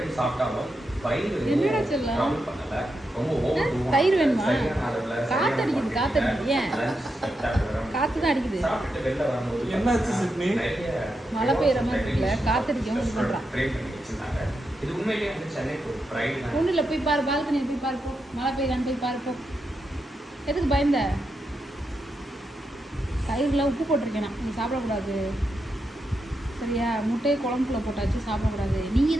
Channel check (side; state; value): both; normal; correlation 0.85